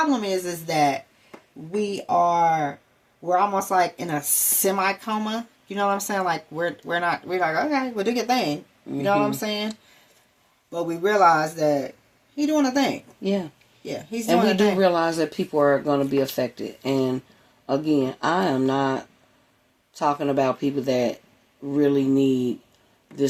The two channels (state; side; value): identical; both; correlation 1.00